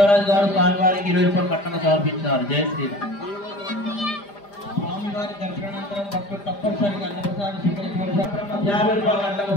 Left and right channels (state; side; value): late; right; 5.0 ms